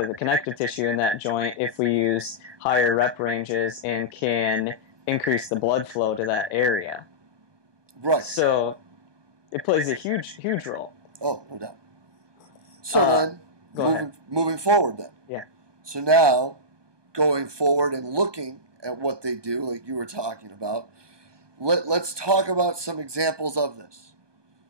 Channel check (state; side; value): late; left; 1.2 ms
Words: the connective tissue in that joint if we use higher rep ranges and can increase the blood flow to that area. Right. So it plays a huge role. Oh, no doubt. So then, moving forward then. Yeah. So now, going forward and looking at what they do, like you were talking about, let's talk about some examples of this.